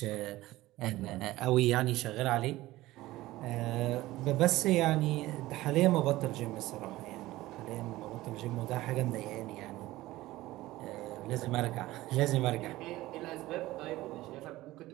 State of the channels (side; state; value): left; quieter; 17.4 dB